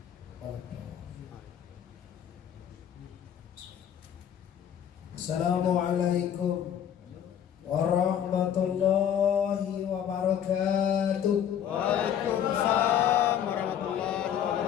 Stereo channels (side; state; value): right; quieter; 9.4 dB